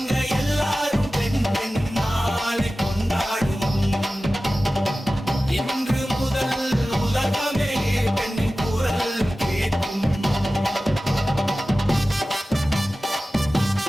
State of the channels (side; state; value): both; normal; correlation 0.95